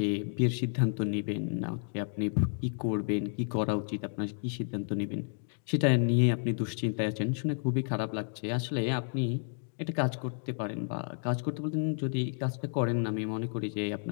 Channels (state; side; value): silent; right; 57 dB below the other